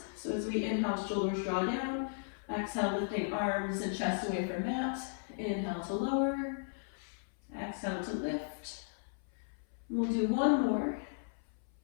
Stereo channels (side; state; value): right; silent; 54 dB below the other